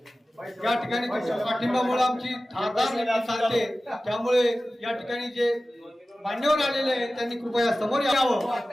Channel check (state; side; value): normal; both; correlation 0.96